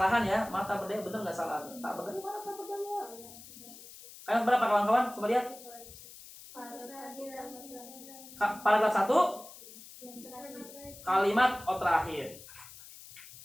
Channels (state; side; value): noise; left; hiss, 17 dB below the sound